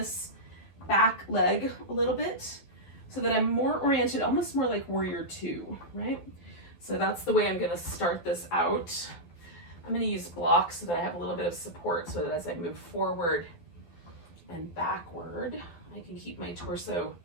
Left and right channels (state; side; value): late; right; 12 ms